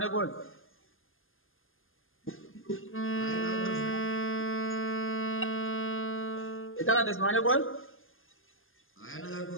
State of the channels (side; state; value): right; late; 0.59 ms